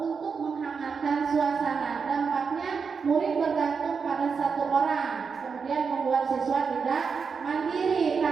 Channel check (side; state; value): left; quieter; 5.6 dB